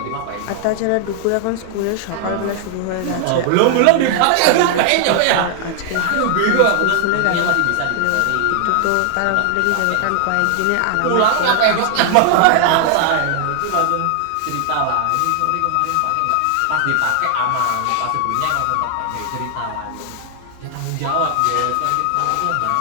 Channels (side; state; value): both; different; correlation 0.00